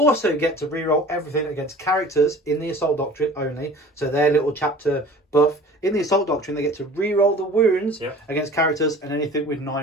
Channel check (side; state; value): both; normal; correlation 0.45